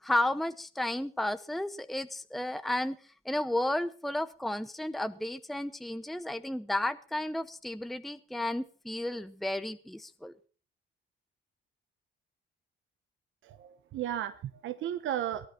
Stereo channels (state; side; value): normal; both; correlation 0.84